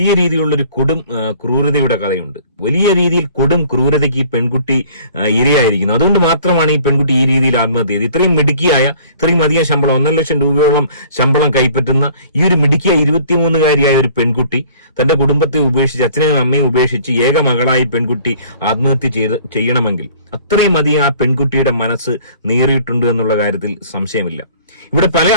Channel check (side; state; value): both; inverted; correlation -0.52